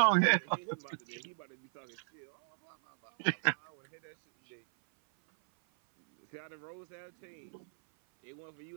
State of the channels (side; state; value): left; silent; 54 dB below the other